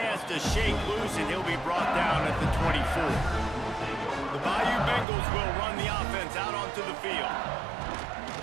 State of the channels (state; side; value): drops out; left; at 5.1 s